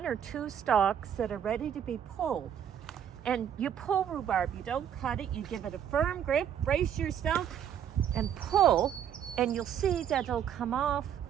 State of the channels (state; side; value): quieter; left; 9.2 dB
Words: or two stalks that are ready to be pulled. And you pull rhubarb, you don't cut it, you give it a firm grip, brace yourself, and pull, and you'll see that it'll come off